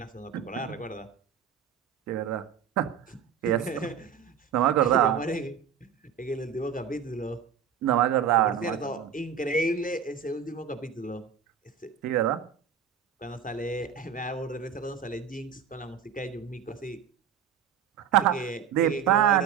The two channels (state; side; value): quieter; left; 7.7 dB